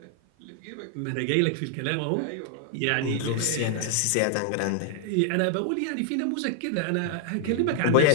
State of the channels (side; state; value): both; different; correlation 0.00